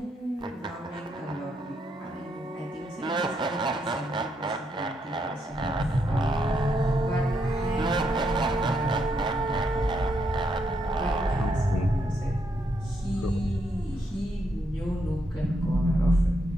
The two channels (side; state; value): both; normal; correlation 0.78